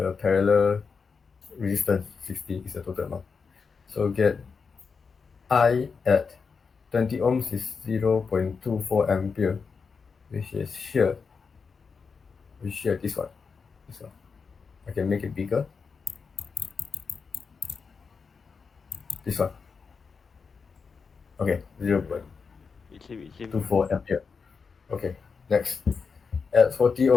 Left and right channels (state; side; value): quieter; right; 5.3 dB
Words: parallel resistance. 60 is the total amount. So get I at 20 ohms is 0.24 ampere, which is here. This one. This one. I can make it bigger. This one. Okay, It's same. 0.24 ampere. Okay, next. At 40